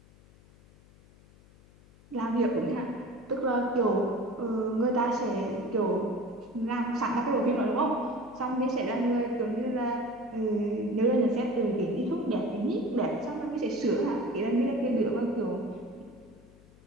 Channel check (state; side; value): noise; left; hum, 26 dB below the sound